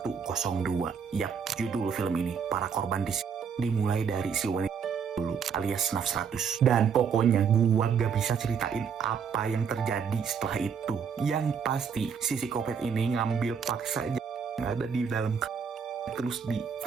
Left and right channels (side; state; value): left; quieter; 6.7 dB